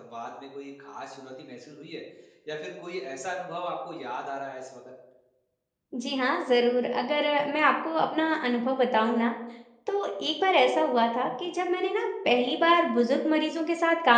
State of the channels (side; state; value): both; identical; correlation 1.00